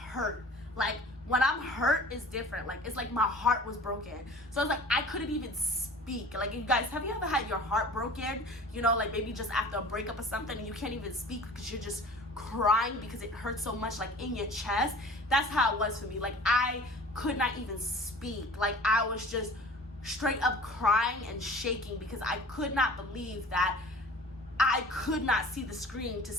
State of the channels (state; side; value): normal; both; correlation 0.43